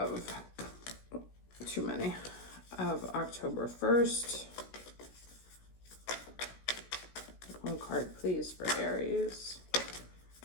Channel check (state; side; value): late; right; 16 ms